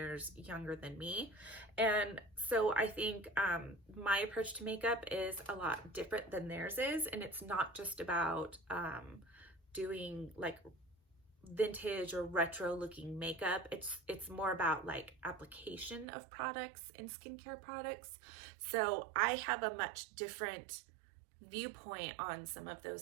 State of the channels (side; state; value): left; drops out; at 16.1 s